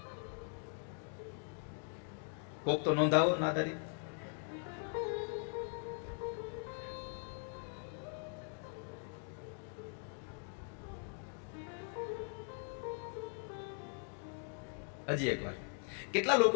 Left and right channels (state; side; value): silent; right; 51 dB below the other